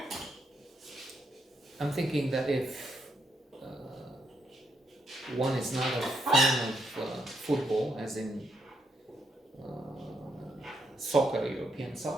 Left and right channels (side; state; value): both; normal; correlation 0.78